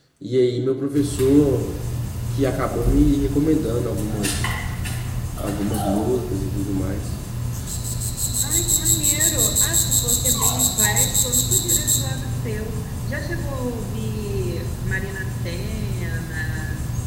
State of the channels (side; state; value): both; identical; correlation 1.00